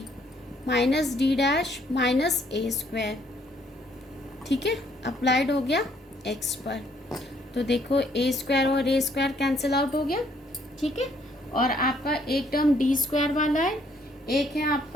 minus D dash minus A square. ठीक है, applied हो गया x पर, तो देखो ए स्क्वायर और ए स्क्वायर कैंसिल आउट हो गया। ठीक है, और आपका एक टर्म डी स्क्वायर वाला है, एक है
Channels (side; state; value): both; normal; correlation 0.66